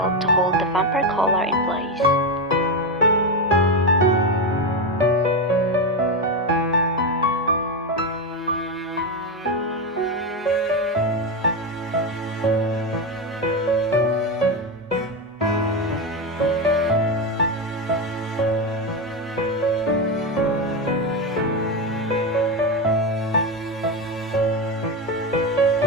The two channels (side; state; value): both; normal; correlation 0.12